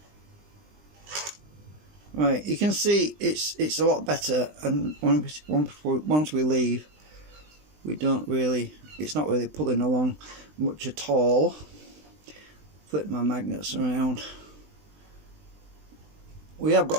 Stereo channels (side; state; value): left; late; 20 ms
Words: Right, you can see it's a lot better, and once we leave, it's not really pulling along much at all. Flip my magnets around. We have